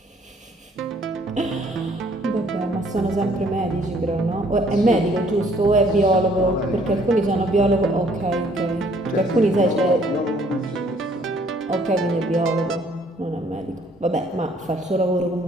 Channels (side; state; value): both; normal; correlation 0.62